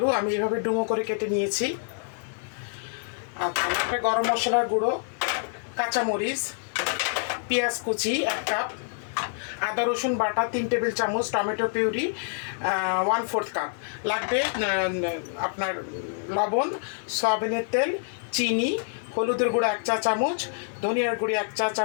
আমি এভাবে ডুমো করে কেটে নিয়েছি। আচ্ছা লাগবে গরম মশলার গুঁড়ো, কাঁচামরিচ, পেঁয়াজ কুচি 1 কাপ, আদা রসুন বাটা 3 টেবিল চামচ, টমেটো পিউরি 1/4 কাপ, লাগবে আপনার লবণ, সয়াবিনের তেল, চিনি, হলুদের গুঁড়ো 1 চা চামচ, ধনিয়ার গুঁড়ি 1 চা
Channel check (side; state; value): right; silent; digital silence